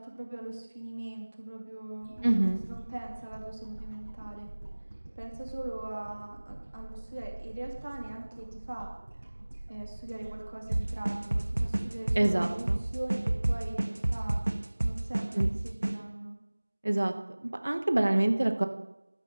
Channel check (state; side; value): inverted; both; correlation -1.00